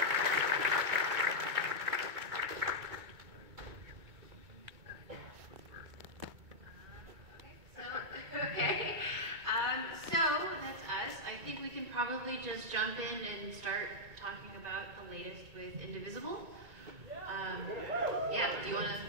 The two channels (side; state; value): left; late; 2.2 ms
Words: So that's us. I think we can probably just jump in and start talking about the latest with Indivisible. Yeah, do you want to?